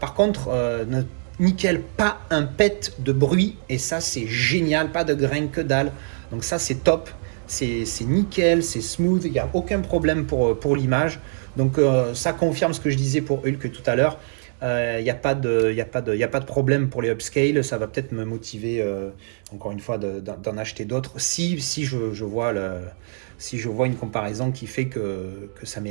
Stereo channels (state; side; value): silent; left; 63 dB below the other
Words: contre, nickel, pas un pet de bruit, et ça c'est génial, pas de grain que dalle. Donc ça c'est top. C'est nickel, c'est smooth, il n'y a aucun problème pour l'image. Donc ça confirme ce que je disais pour Hulk tout à l'heure. Il n'y a pas de problème pour les upscale. Ça va peut-être me motiver, encore une fois, d'en acheter d'autres. Si je vois une comparaison qui fait que ça